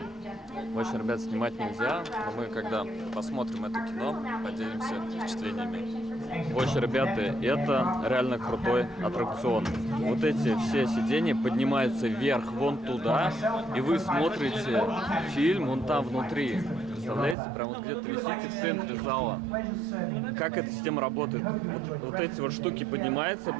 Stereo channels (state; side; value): drops out; left; at 17.4 s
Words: Очень, ребят, снимать нельзя, но мы, когда посмотрим это кино, поделимся впечатлениями. Очень, ребята, это реально крутой аттракцион. Вот эти все сиденья поднимаются вверх, вон туда, и вы смотрите фильм вон там внутри. Представляете, прям вот где-то висите в центре зала. Как эта система работает? Вот эти вот штуки поднимаются